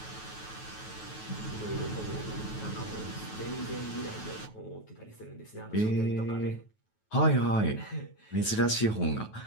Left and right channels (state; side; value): late; right; 9.3 ms